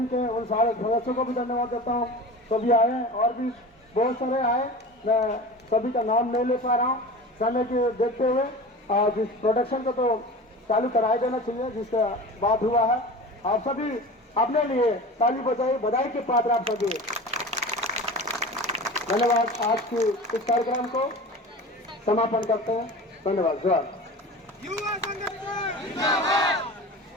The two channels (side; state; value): both; normal; correlation 0.34